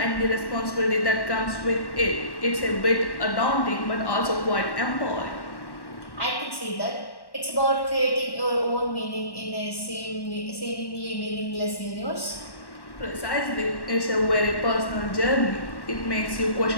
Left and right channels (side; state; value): right; late; 1.1 ms